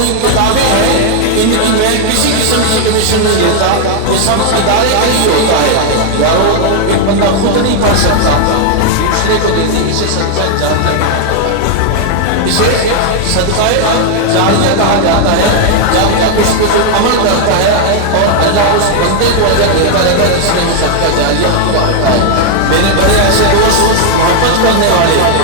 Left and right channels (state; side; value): different; both; correlation 0.00